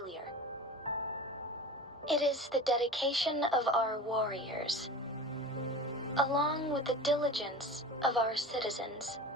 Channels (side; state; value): both; normal; correlation 0.34